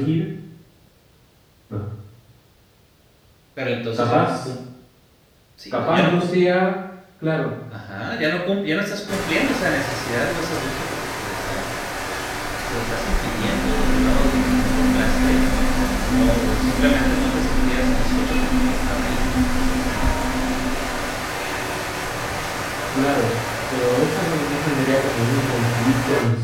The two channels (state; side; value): identical; both; correlation 1.00